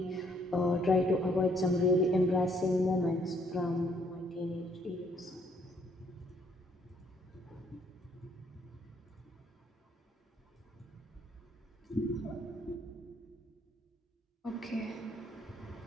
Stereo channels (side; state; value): both; normal; correlation 0.66